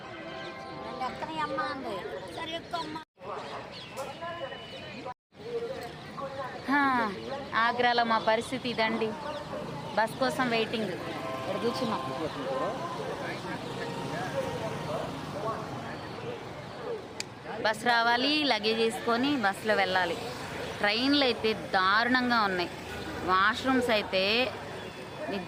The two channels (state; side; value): identical; both; correlation 1.00